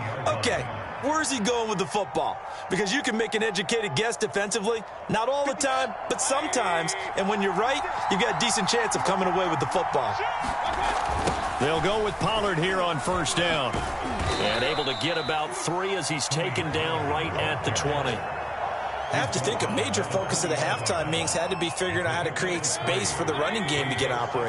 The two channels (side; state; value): both; identical; correlation 1.00